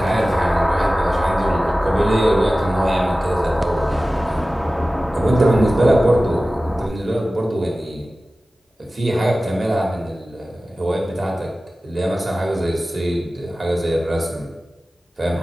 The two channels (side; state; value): both; normal; correlation 0.96